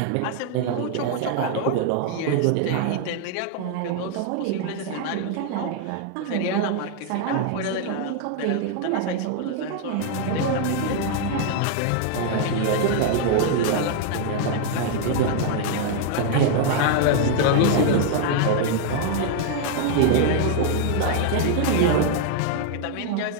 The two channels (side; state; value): both; different; correlation 0.00